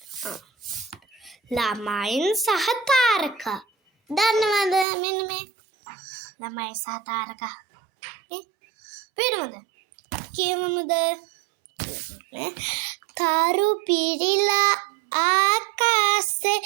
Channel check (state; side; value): drops out; left; at 4.9 s